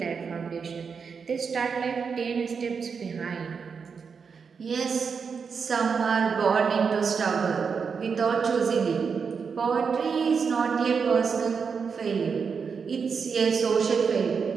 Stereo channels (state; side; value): quieter; left; 5.8 dB